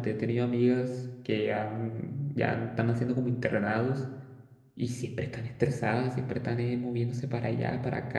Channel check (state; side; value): identical; both; correlation 1.00